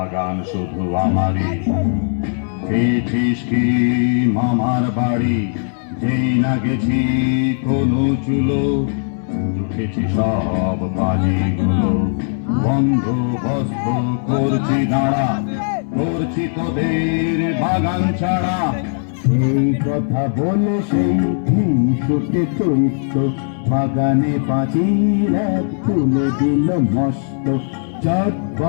শুধু আমারই পেয়েছিস কি মামার বাড়ি যেই না গেছি কোনো চুলো উঠেছি সব বাজিগুলো বন্দোবস্ত করছি দাঁড়া করছি তোদের বাগান ছাড়া এই কথা বলে সেই হিংসুটে চৈত্য বাগানে পাঁচিল এক তুলে দিল মস্ত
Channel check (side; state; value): right; silent; 63 dB below the other